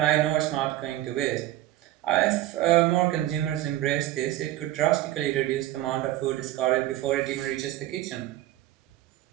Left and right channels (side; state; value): left; quieter; 14.8 dB